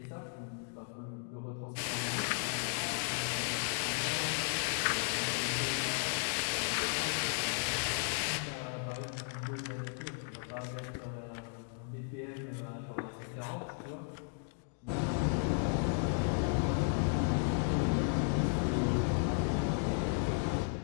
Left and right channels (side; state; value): right; silent; 54 dB below the other